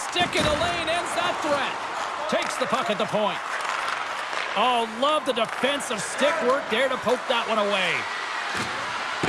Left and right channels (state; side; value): identical; both; correlation 1.00